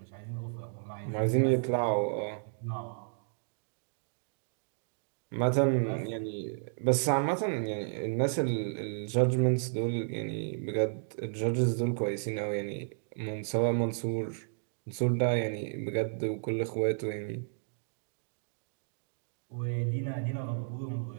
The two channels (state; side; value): silent; left; digital silence